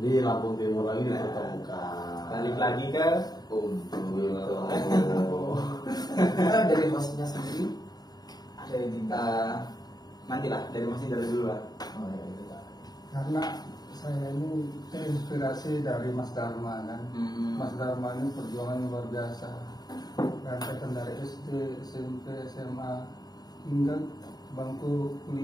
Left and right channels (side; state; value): right; late; 0.19 ms